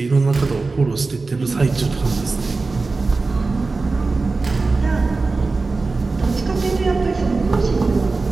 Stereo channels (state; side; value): quieter; left; 3.8 dB